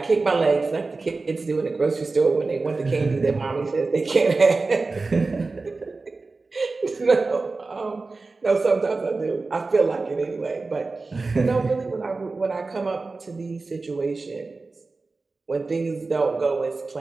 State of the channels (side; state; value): left; quieter; 3.7 dB